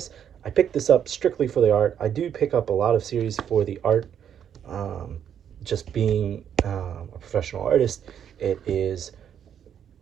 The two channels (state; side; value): quieter; left; 9.0 dB